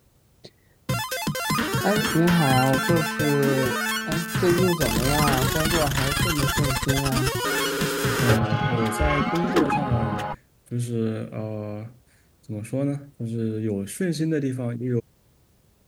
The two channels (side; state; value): both; identical; correlation 1.00